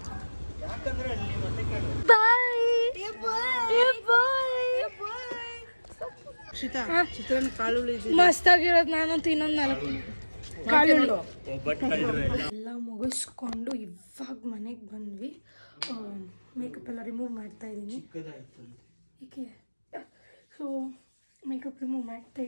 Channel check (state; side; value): inverted; both; correlation -1.00